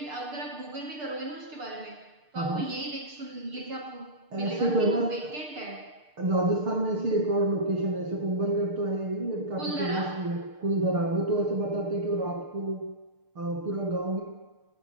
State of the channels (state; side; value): late; left; 6.7 ms